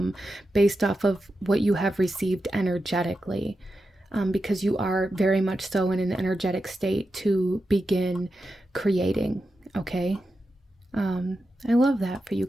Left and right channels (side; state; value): both; normal; correlation 0.89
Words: based off of what you have received energetically, because you are very much so in an energetic state to begin creating. Okay. I love that for you